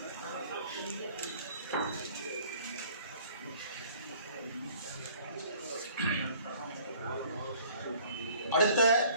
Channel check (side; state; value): both; inverted; correlation -0.55